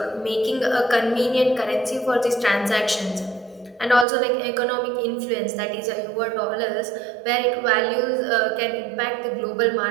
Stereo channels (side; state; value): left; drops out; at 4.0 s